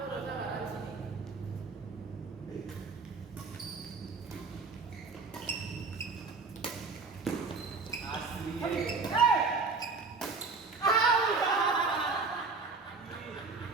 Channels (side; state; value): left; quieter; 4.3 dB